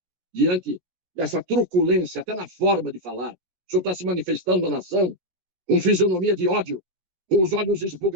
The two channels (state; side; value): late; left; 16 ms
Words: diante dessa truculência, até na forma de falar. O senhor está se manifestando na nação com fisionomia de ódio, com os olhos